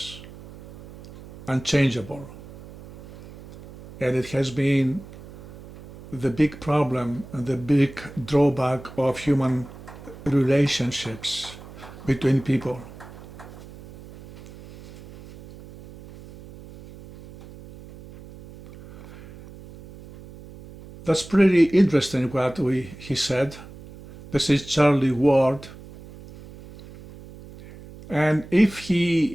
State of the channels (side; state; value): right; noise; hum, 18 dB below the sound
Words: unchangeable. And it has been the big problem and the big drawback of human relationships between people. That's pretty interesting what he said. This is Charlie Ward. And if